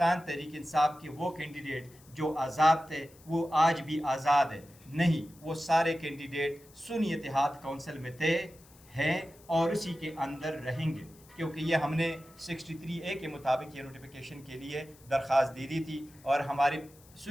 تحریک انصاف کے وہ کینڈیڈیٹ جو آزاد تھے وہ آج بھی آزاد ہے. نہیں، وہ سارے کینڈیڈیٹ سنی اتحاد کونسل میں تھے، ہیں اور اسی کے اندر رہیں گے، کیونکہ یہ ہم نے 63A کے مطابق یہ نوٹیفیکیشن کے لیے درخواست دے دی تھی اور ہماری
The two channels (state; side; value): noise; left; hiss, 25 dB below the sound